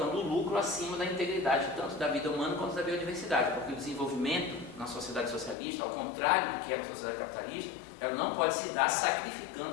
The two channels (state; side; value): drops out; right; at 5.6 s